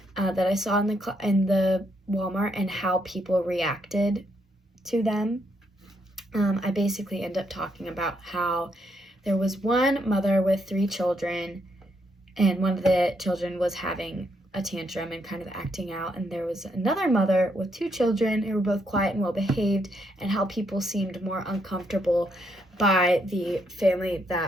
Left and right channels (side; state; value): both; normal; correlation 0.76